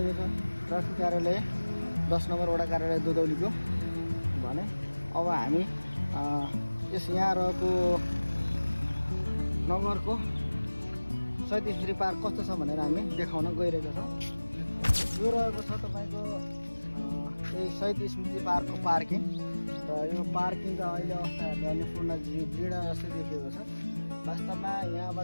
छ ट्राफिक कार्यालय 10 नम्बर वडा कार्यालय दुधौलीको भने अब हामी यस यहाँ रहेको नगरको सैदी स्मृति पार्क कस्तो छ भनेर हामी देखाउन गइरहेका छौँ। यो रहेको छ तपाईको यही सैदी स्मृति पार्कको पार्किङ र यो पार्किङ त अहिले अवस्था हेर्दा पूर्ण जीर्ण जस्तै देखिएको छ। वास्तवमा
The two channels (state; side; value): inverted; both; correlation -1.00